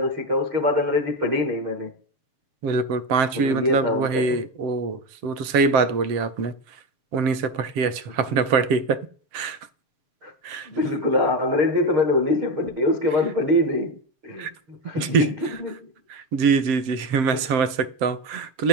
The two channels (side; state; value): left; late; 7.6 ms